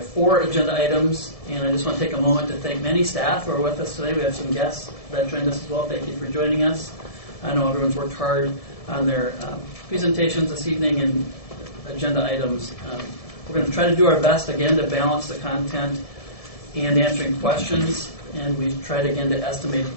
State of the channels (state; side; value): late; right; 1.7 ms